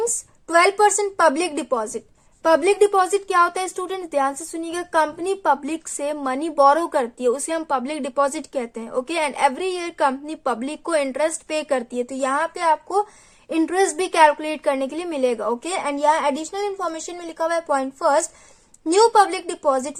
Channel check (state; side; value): identical; both; correlation 1.00